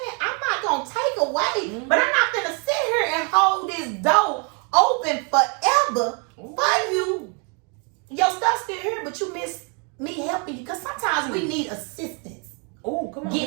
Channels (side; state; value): left; quieter; 36.6 dB